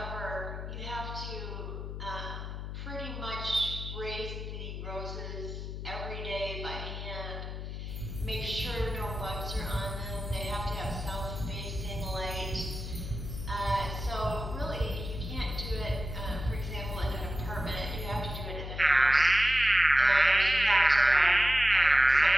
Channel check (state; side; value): noise; left; hum, 7 dB below the sound